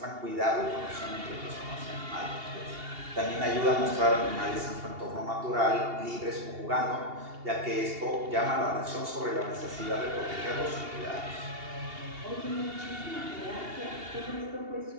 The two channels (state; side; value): late; left; 2.8 ms